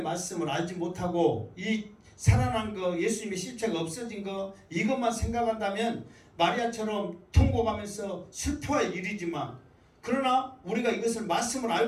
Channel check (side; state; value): both; identical; correlation 1.00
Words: 말씀을 알지 못하고 이 살아난 거, 예수님의 실체가 없어진 거 이것만 생각한다면 마리아처럼 통곡하면서 슬퍼할 일이지만 그러나 우리가 이것을 말씀을